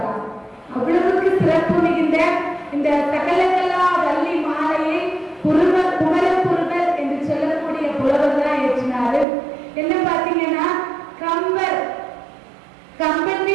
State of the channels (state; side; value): drops out; left; at 9.2 s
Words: அவ்வளவுக்கு சிறப்பு மிகுந்த இந்த சகலகலா வள்ளி மாலையை குமரகுருவர் என்று சொல்லக்கூடிய புலவர் தான் ஏற்றினாரு. என்ன பார்த்தீங்கன்னா, கம்பன்